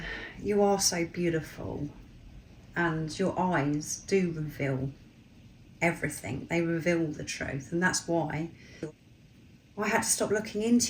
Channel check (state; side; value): identical; both; correlation 1.00